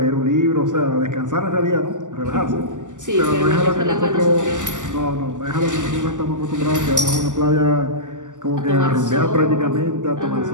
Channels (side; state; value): left; late; 0.87 ms